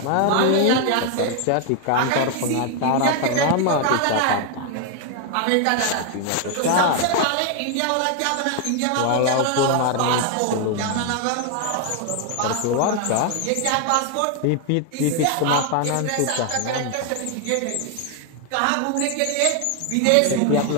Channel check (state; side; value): different; both; correlation 0.00